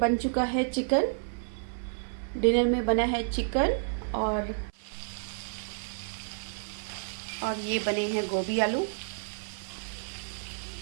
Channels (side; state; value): left; silent; 58 dB below the other